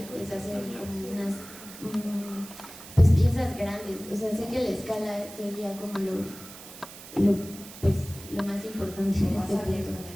es hacer como unas pues piezas grandes. O sea, sé que la escala sería como lo más importante en este punto.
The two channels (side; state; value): right; noise; hiss, 15 dB below the sound